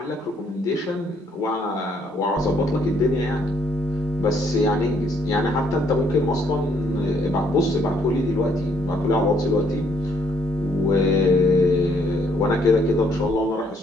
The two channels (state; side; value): normal; both; correlation 0.68